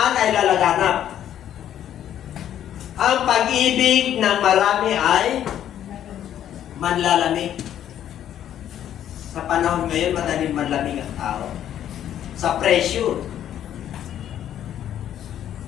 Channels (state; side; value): quieter; right; 10.7 dB